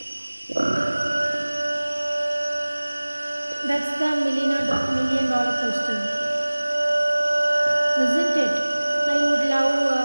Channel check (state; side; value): inverted; both; correlation -1.00